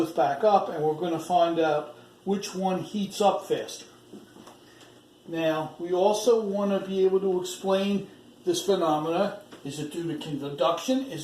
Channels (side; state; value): both; identical; correlation 1.00